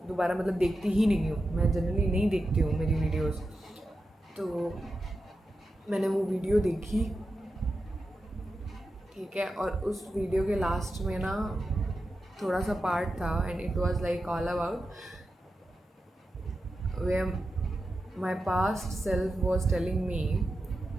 दोबारा मतलब देखती ही नहीं हूँ, मैं जनरली नहीं देखती हूँ मेरी वीडियोस। तो मैंने वो वीडियो देखी, ठीक है। और उस वीडियो के लास्ट में ना थोड़ा सा पार्ट था, and it was like all about where my past self was telling me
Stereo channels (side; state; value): both; normal; correlation 0.90